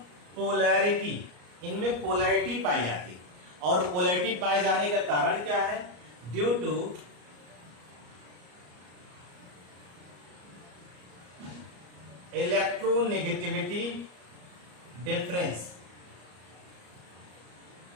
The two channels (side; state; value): left; late; 34 ms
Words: polarity, इनमें पोलैरिटी पाई जाती है। और पोलैरिटी पाए जाने का कारण क्या है? Due to electronegativity difference